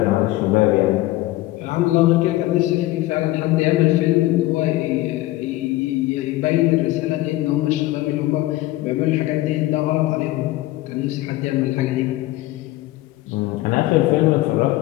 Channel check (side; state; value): right; quieter; 17.2 dB